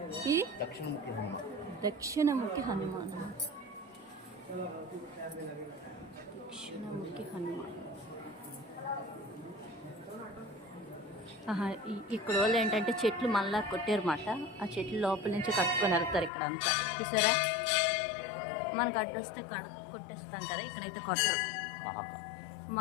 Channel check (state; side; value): drops out; right; at 16.3 s